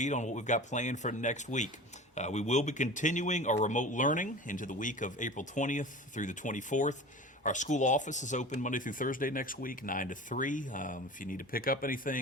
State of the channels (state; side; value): normal; both; correlation 0.35